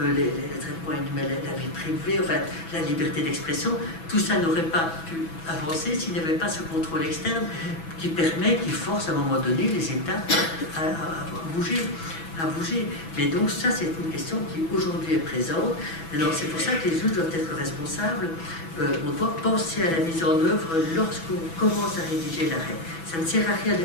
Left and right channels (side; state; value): right; late; 6.1 ms